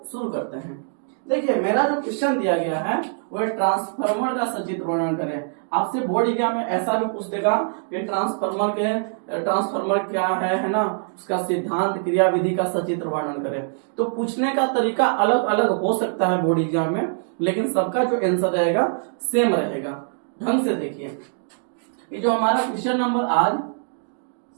शुरू करते हैं। देखिए, मेरा जो क्वेश्चन दिया गया है वो ट्रांसफार्मर का सचित्र वर्णन करें। आपसे बोर्ड एग्जाम में ऐसा भी पूछ देगा कि ट्रांसफार्मर क्या है ना, उसका सिद्धांत, क्रिया विधि का सचित्र वर्णन करें। तो पूछने का तरीका अलग अलग हो सकता है बोर्ड एग्जाम में, लेकिन सबका जो आंसर रहेगा सेम रहेगा। ढंग से देखिए, ये जो हमारा क्वेश्चन नंबर आज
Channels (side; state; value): left; silent; digital silence